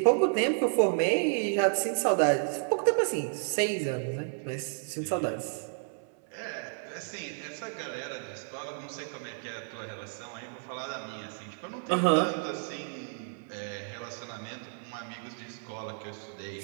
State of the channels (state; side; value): silent; left; 57 dB below the other